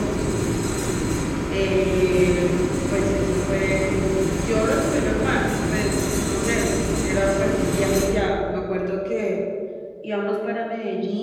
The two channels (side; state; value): both; identical; correlation 1.00